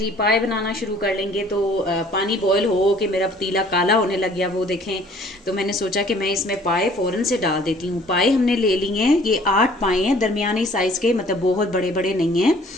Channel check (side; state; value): both; normal; correlation 0.55